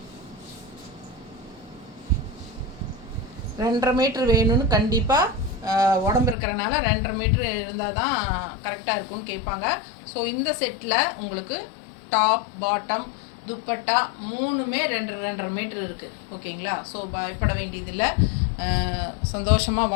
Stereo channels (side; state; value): right; drops out; at 6.4 s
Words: ரெண்டரை மீட்டர் வேணும்னு கண்டிப்பாக உடம்பு இருக்கிறனால 2.5 மீட்டர் இருந்தால் தான் கரெக்டாக இருக்கும்னு கேட்பாங்க. ஸோ இந்த செட்டில் உங்களுக்கு டாப் பாட்டம் துப்பட்டா 3மே 2.5 மீட்டர் இருக்குது. ஓகேங்களா? ஸோ பயப்பட வேண்டியதில்லை, சந்தோஷமாக